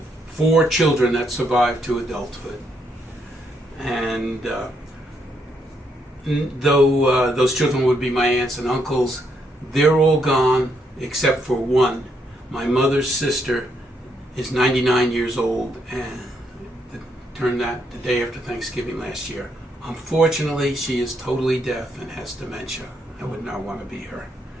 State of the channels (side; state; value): both; normal; correlation 0.76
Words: 4 children that survived to adulthood. And though those children would be my aunts and uncles, they're all gone except for one. My mother's sister is 99 years old and turned that the day after Thanksgiving last year. Unfortunately, she is totally deaf and has dementia. I would not want to be her.